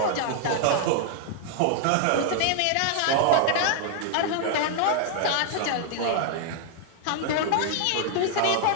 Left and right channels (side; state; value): both; different; correlation 0.00